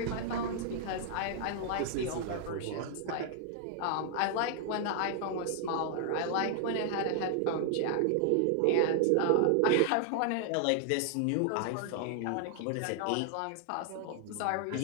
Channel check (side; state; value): both; different; correlation 0.00